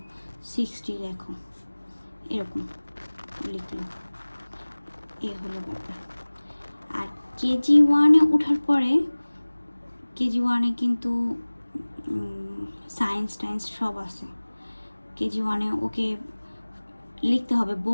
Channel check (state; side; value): inverted; both; correlation -1.00